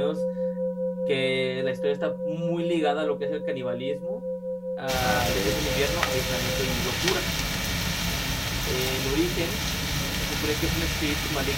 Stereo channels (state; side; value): identical; both; correlation 1.00